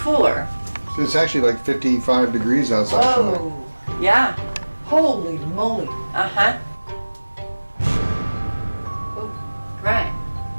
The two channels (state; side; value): inverted; both; correlation -1.00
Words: So it's actually like 55 degrees outside. Oh, Yeah. holy moly. Right.